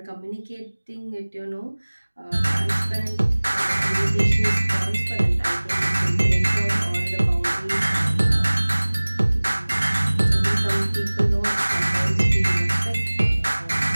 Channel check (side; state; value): both; inverted; correlation -1.00